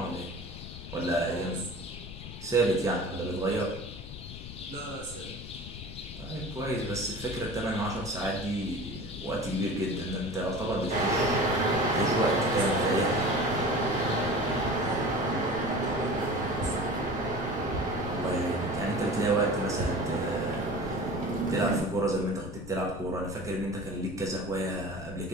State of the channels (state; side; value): noise; left; rumble, 12 dB below the sound